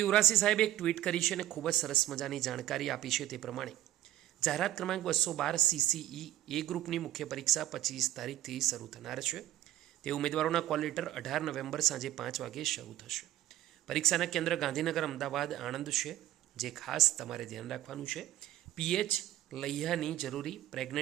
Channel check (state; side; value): quieter; left; 13.6 dB